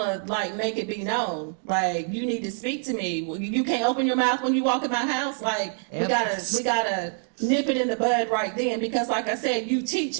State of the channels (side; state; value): left; silent; 58 dB below the other